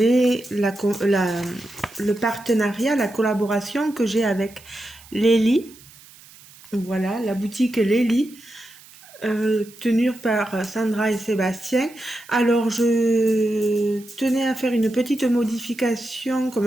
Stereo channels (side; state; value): right; noise; hiss, 23 dB below the sound